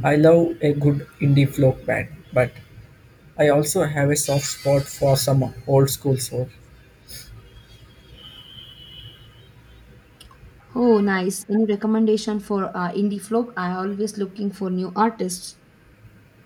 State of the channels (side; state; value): both; identical; correlation 1.00